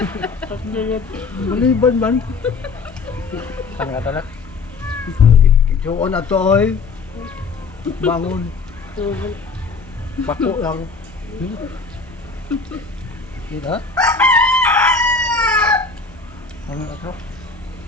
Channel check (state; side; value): quieter; right; 4.4 dB